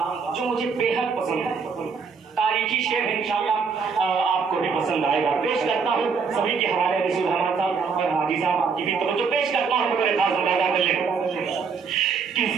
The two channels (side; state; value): left; quieter; 5.5 dB